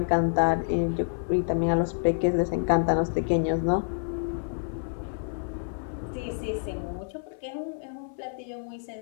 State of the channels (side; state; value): right; silent; 59 dB below the other